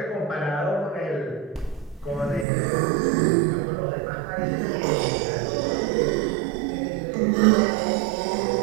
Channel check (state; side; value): drops out; left; at 2.5 s